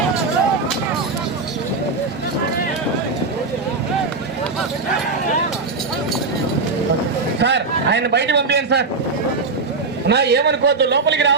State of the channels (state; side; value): quieter; left; 4.0 dB